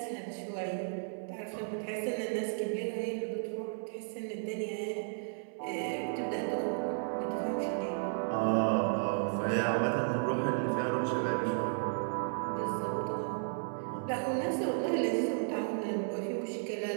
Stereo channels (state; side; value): silent; left; 55 dB below the other